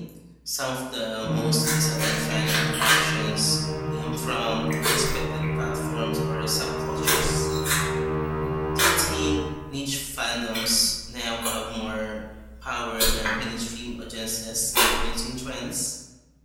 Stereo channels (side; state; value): both; identical; correlation 1.00